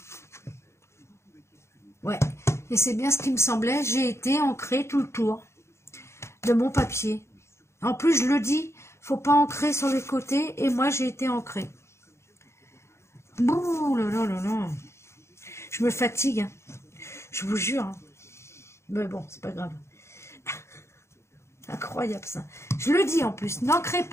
Ouais, et c'est bien ce qui me semblait. J'ai été ancrée tout le tour de mon papier. En plus, je le dis, faut pas ancrer sur les côtés. Et moi, j'ai été ancrée. Bouh là là là là. Je me fatigue. Hein. Je vous jure. Hein. Mais bon, c'est pas grave. Incroyable ça. Je le dis en plus. N'ancrez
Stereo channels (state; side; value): late; right; 0.13 ms